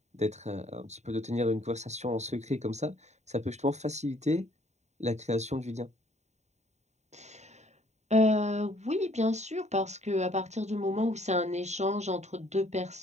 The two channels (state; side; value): late; left; 0.33 ms